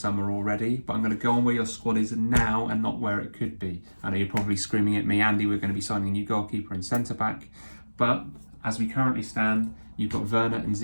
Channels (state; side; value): inverted; both; correlation -1.00